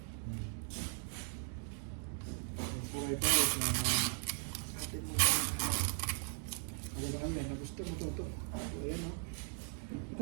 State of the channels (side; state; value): left; silent; 52 dB below the other